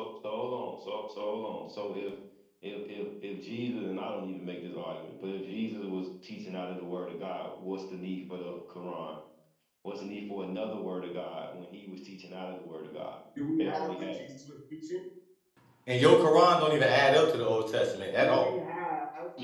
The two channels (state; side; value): identical; both; correlation 1.00